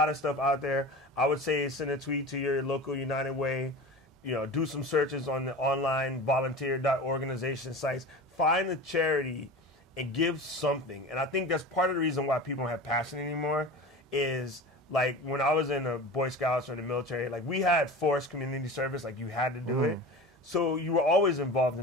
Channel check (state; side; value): normal; both; correlation 0.33